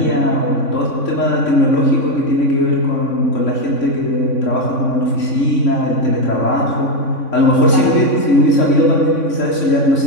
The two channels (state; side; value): late; right; 3.6 ms